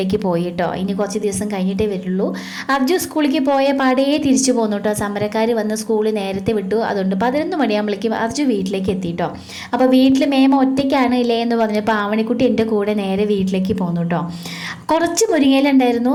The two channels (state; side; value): identical; both; correlation 1.00